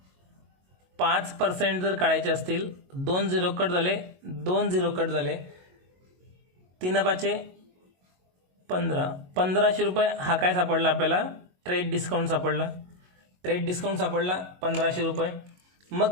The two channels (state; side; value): late; left; 22 ms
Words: 5% जर काढायचे असतील, 2 झिरो कट झाले, 2 झिरो कट झाले, 3 5 15, 1500 रुपये हा काय सापडला आपल्याला, ट्रेड डिस्काउंट सापडला. ट्रेड डिस्काउंट सापडला 1500 रुपये.